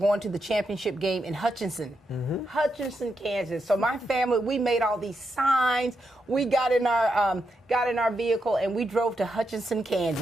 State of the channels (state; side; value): normal; both; correlation 0.84